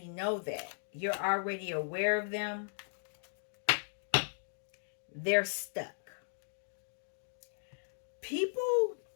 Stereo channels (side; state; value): right; silent; digital silence